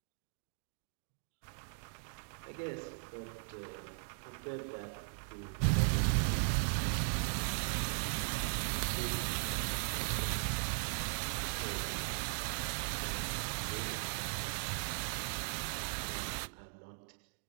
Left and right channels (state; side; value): silent; left; digital silence